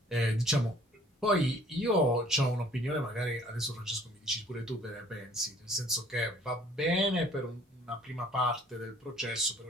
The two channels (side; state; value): both; normal; correlation 0.56